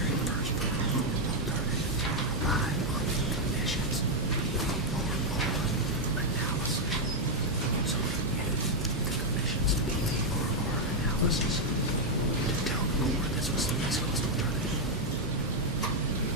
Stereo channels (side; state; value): both; normal; correlation 0.00